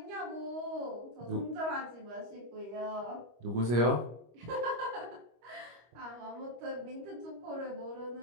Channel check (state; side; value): late; left; 25 ms